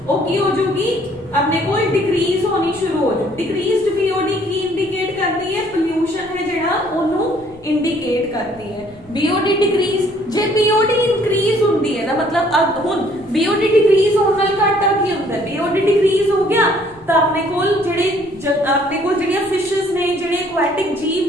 वो की हो जाएगी अपने को डिक्रीज होनी शुरू हो जाए। डिक्रीज्ड BOD की इंडिकेट करती है पोल्यूशन है जिहड़ा ओनू इंडिकेट करती है। BOD डिक्रीज जे BOD इंक्रीज होती है ना, मतलब अब हुण BOD डिक्रीज होने नाल घाटा की होंदा है। BOD डिक्रीज हो गया तो अपने कोल जिहड़ियां फिशेस ने जिहड़े एक्वाटिक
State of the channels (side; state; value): left; noise; rumble, 25 dB below the sound